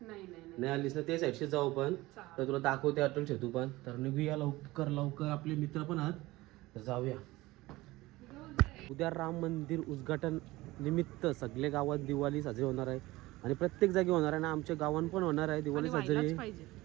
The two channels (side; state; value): left; quieter; 19.3 dB